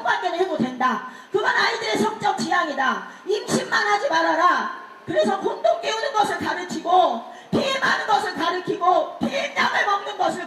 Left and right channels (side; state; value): both; identical; correlation 1.00